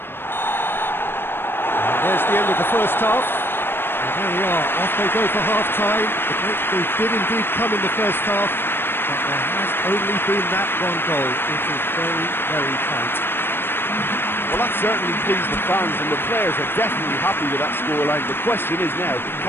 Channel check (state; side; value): late; right; 0.10 ms